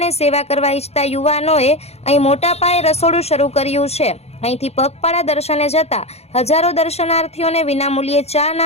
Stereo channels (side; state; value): right; late; 0.30 ms